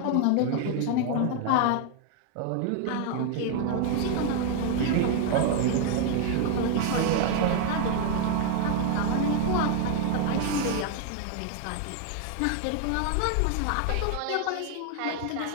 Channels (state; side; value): different; both; correlation 0.00